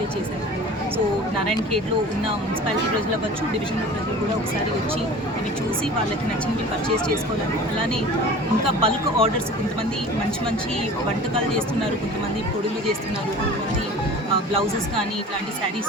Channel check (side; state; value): both; normal; correlation 0.41